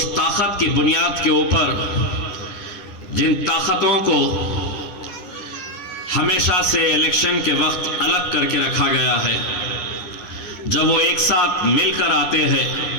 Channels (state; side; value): late; right; 9.9 ms